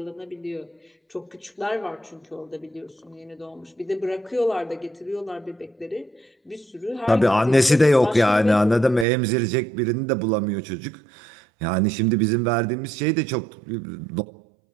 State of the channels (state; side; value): drops out; left; at 9.1 s